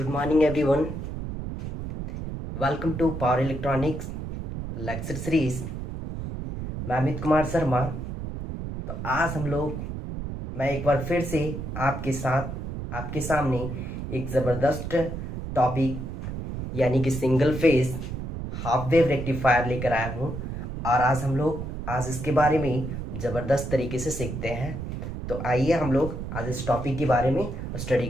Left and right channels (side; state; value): right; noise; rumble, 6 dB below the sound